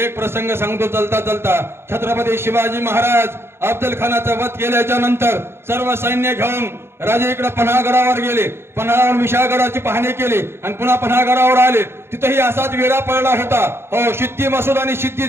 प्रसंग सांगतो चलता चलता. छत्रपती शिवाजी महाराज अफजल खानाचा वध केल्याच्या नंतर सर्व सैन्य घेऊन राजे इकडे पन्हागडावर गेले. पन्हाळावर विशाळगडाची पाहणी केली आणि पुन्हा पन्हागडावर आले. तिथेही असाच वेढा पडला होता. हो, सिद्धी मसूद आणि सिद्धी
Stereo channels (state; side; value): late; left; 0.12 ms